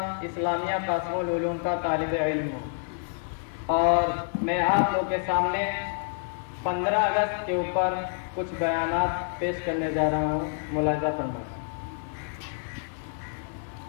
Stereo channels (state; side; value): silent; right; 57 dB below the other